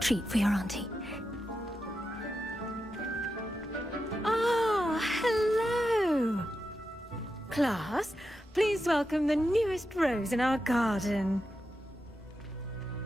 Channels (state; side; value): normal; both; correlation 0.88